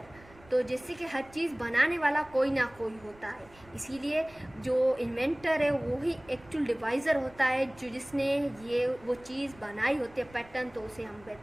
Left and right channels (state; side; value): noise; right; rumble, 24 dB below the sound